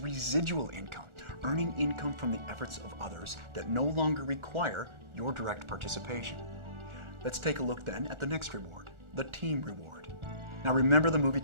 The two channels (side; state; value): left; late; 1.4 ms